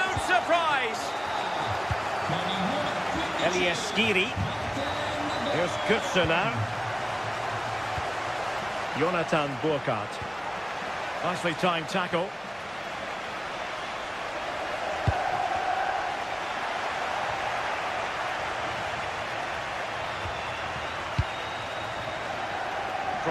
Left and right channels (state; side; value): identical; both; correlation 1.00